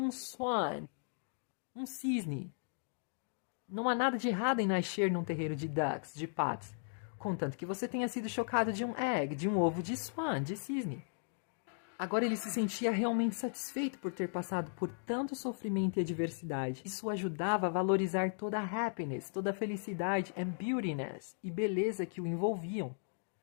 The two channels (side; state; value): right; silent; digital silence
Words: um cisne. Não há nada de errado em nascer num terreiro de ducks, de patos, contanto que você tenha sido chocado de um ovo de cisne. Agora ele se sentia realmente satisfeito por ter passado por tanto sofrimento e adversidade. Isso o ajudava a valorizar toda a happiness, toda a felicidade and beautiness e beleza que o envolviam.